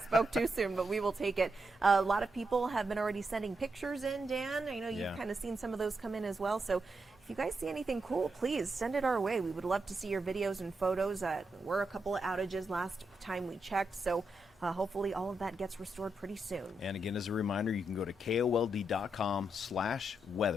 but we will take it. A lot of people have been already sending pictures in, Dan. I know you've kind of seen some of those come in as well. So if you guys see anything cool, please send it our way. We would love to see your videos and photos. Were a couple of outages last time we checked, so hopefully all of that gets restored pretty soon. And again, as a reminder, you can go to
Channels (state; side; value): normal; both; correlation 0.84